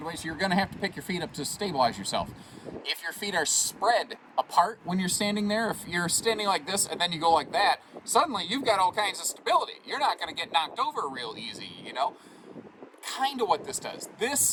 you're going to have to pick your feet up to stabilize yourself. If your feet are spread apart when you're standing there, if you're standing like this and then you go like that, suddenly you've got all kinds of stability. You're not going to get knocked over real easy, you know? Kind of what this does.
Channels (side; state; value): both; identical; correlation 1.00